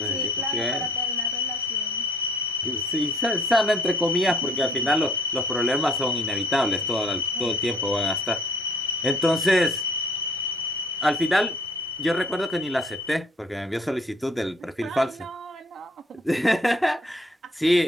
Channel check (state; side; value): normal; both; correlation 0.57